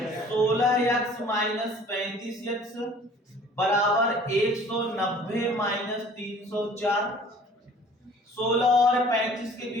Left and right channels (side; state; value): both; normal; correlation 0.50